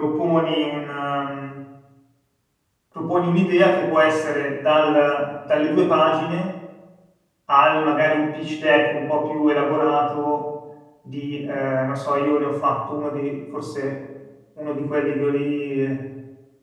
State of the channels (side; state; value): both; identical; correlation 1.00